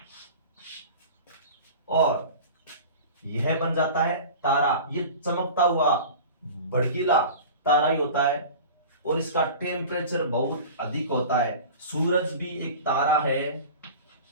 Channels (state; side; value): inverted; both; correlation -0.37